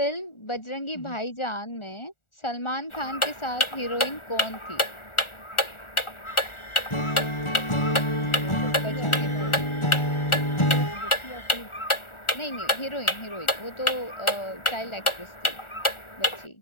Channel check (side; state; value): right; late; 1.4 ms